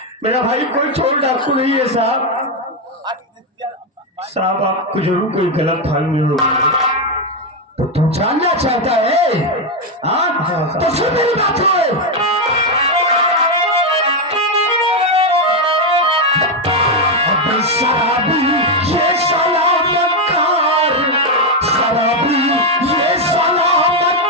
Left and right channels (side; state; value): both; normal; correlation 0.05